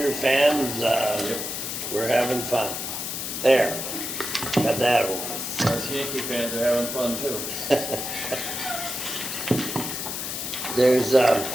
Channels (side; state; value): left; noise; hiss, 4 dB below the sound